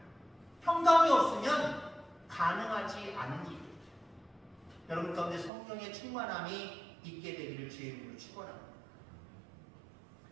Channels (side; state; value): left; drops out; at 5.5 s